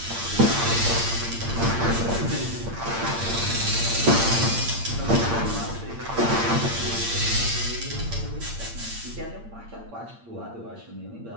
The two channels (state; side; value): late; left; 8.7 ms